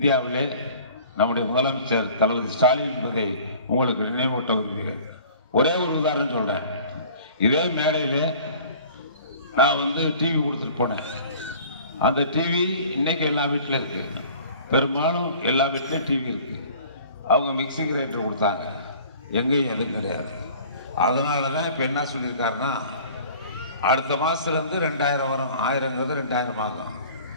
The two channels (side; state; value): both; inverted; correlation -0.47